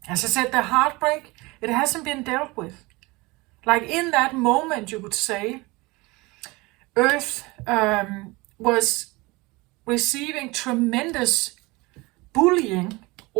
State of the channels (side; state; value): left; quieter; 23.5 dB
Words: I said, the heartbreak, it hasn't been dealt with. Like in that moment, you could say, Earth was receiving tremendous bullying